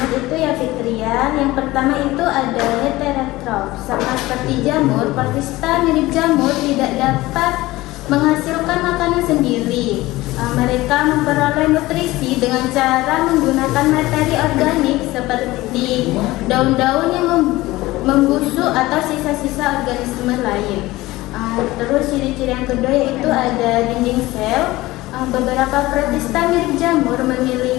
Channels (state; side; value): quieter; right; 18.7 dB